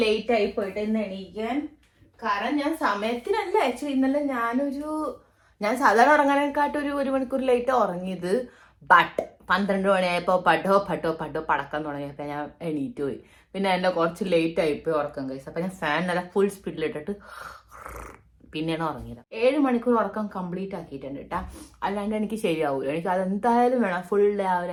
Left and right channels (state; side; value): identical; both; correlation 1.00